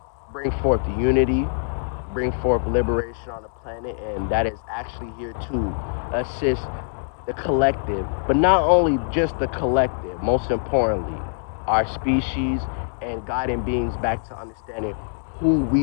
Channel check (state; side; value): silent; right; 63 dB below the other